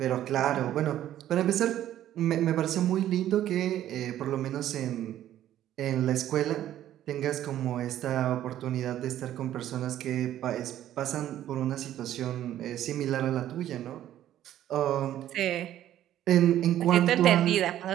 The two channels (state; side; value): quieter; left; 12.2 dB